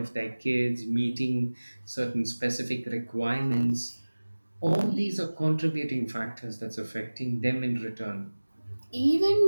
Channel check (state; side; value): inverted; both; correlation -1.00